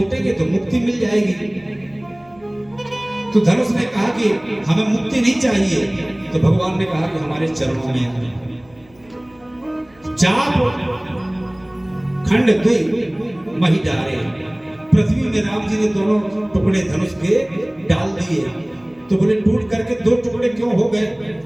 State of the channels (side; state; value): right; noise; hum, 28 dB below the sound